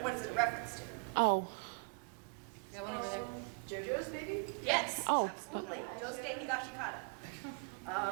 is it a reference to? Oh. Got one over there. JoJo's, maybe? Yes. Oh. Absolutely. Josuke Higashikata.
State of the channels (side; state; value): left; quieter; 37.0 dB